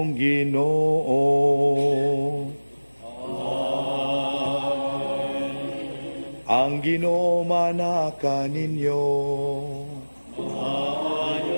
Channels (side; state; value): both; inverted; correlation -1.00